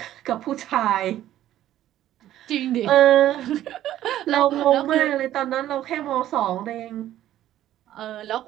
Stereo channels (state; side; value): quieter; left; 12.9 dB